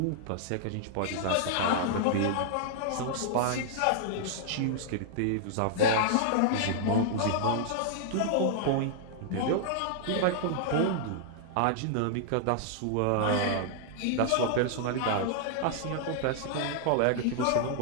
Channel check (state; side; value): different; both; correlation -0.01